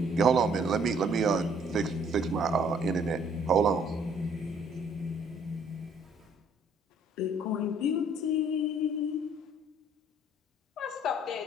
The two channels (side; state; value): both; normal; correlation 0.61